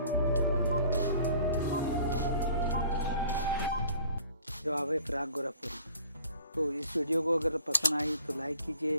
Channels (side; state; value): both; inverted; correlation -0.53